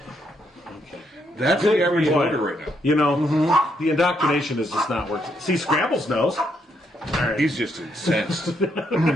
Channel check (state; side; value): normal; both; correlation 0.76